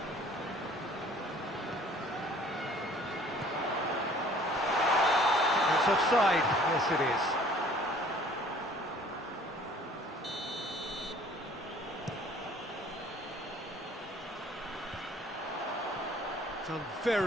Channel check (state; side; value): normal; both; correlation 0.53